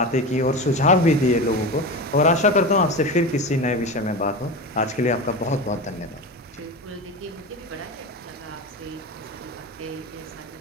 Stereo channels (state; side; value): normal; both; correlation 0.25